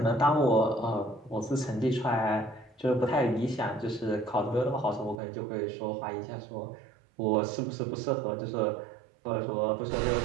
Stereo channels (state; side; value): drops out; left; at 5.2 s